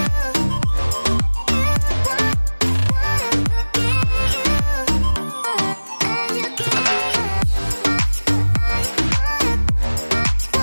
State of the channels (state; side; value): inverted; both; correlation -1.00